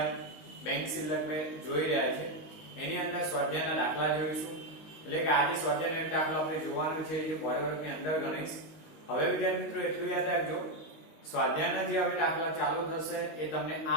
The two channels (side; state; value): right; late; 19 ms